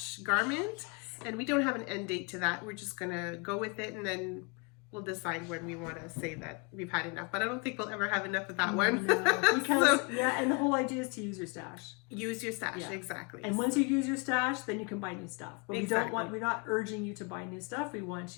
garment, and we don't have an end date to that. We're just going to go with it, and then we'll decide when we want to say that we've had enough. But I don't think we'll ever have enough of that one. No, because, and the whole idea is to use your stash. Use your stash, exactly. And once you use your stash, then you can buy new stuff. But exactly. we're not urging you to buy new stuff. We want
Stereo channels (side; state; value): right; quieter; 32.6 dB